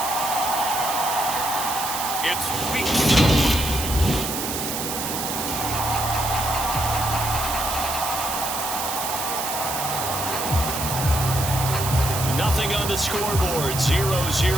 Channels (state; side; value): noise; right; hiss, 4 dB below the sound